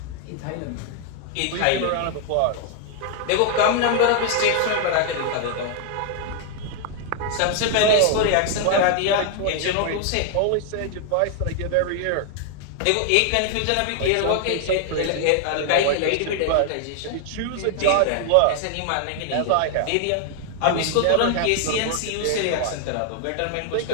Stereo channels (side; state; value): both; different; correlation 0.00